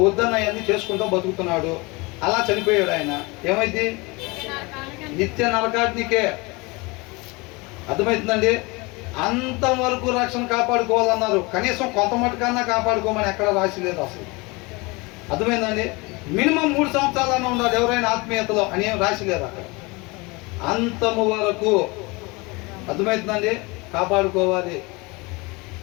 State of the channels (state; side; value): quieter; right; 25.8 dB